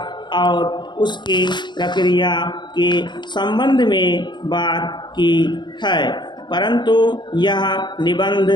और उसकी प्रक्रिया के संबंध में बात की है, परंतु यह निबंध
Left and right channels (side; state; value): right; late; 0.22 ms